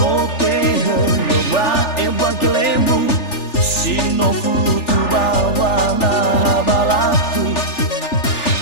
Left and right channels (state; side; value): late; right; 3.4 ms